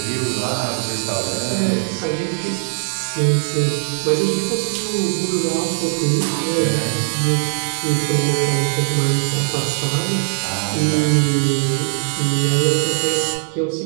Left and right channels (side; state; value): left; silent; digital silence